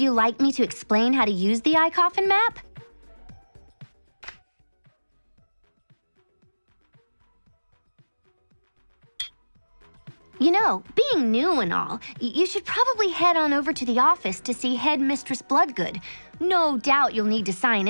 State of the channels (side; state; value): both; inverted; correlation -1.00